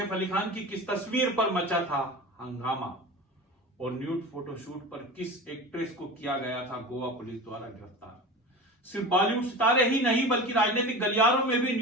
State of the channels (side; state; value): both; normal; correlation 0.31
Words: अली खान की किस तस्वीर पर मचा था हंगामा। और न्यूड फोटोशूट पर किस एक्ट्रेस को किया गया था गोवा पुलिस द्वारा गिरफ्तार। सिर्फ बॉलीवुड सितारे ही नहीं बल्कि राजनीतिक गलियारों में भी